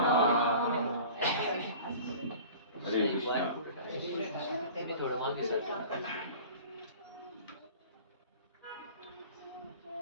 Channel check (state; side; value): inverted; both; correlation -0.42